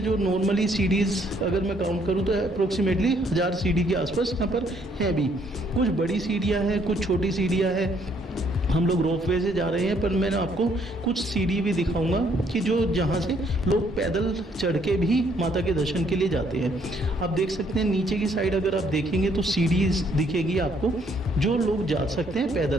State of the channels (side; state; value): both; normal; correlation 0.67